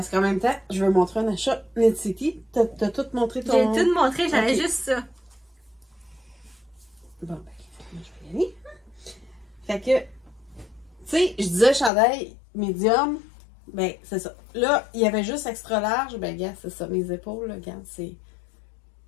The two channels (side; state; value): right; drops out; at 11.9 s